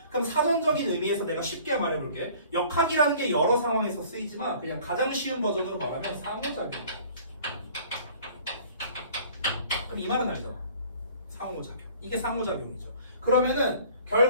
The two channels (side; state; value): both; inverted; correlation -0.50